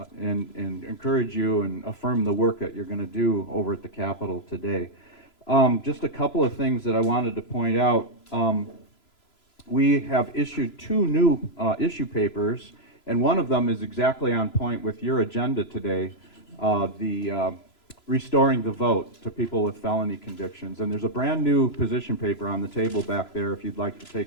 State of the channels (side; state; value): right; late; 3.0 ms